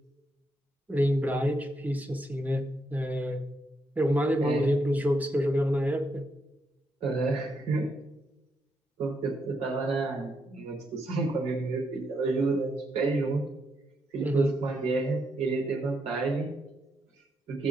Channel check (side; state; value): both; normal; correlation 0.80